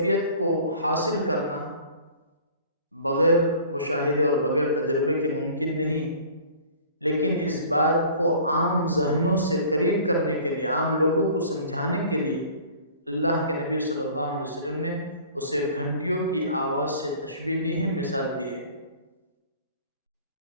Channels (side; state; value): both; inverted; correlation -0.47